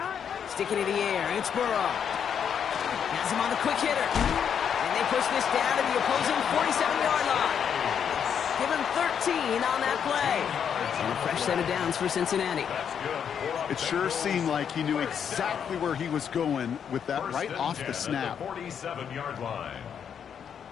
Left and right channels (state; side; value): quieter; right; 7.9 dB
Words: Sticking in the air, it's Burrow. Has him on the quick hitter. And they push this down to the opposing 47-yard line. Give him 13 on that play. And a fresh set of downs for Cincinnati. It sure seemed like he knew exactly where he was going with that right off the snap. 47-yard line.